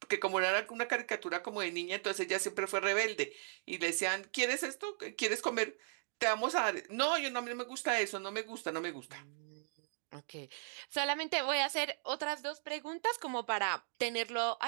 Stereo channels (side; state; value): left; silent; digital silence